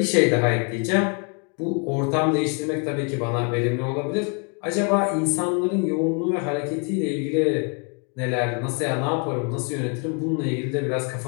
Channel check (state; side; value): quieter; right; 37.3 dB